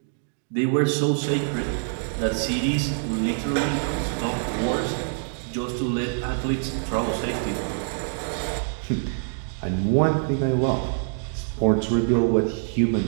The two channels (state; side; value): silent; left; digital silence